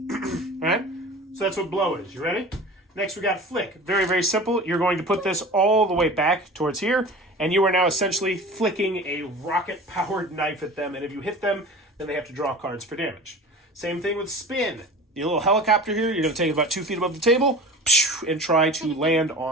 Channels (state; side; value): normal; both; correlation 0.37